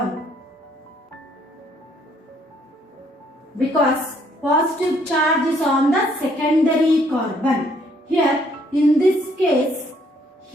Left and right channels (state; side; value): normal; both; correlation 0.67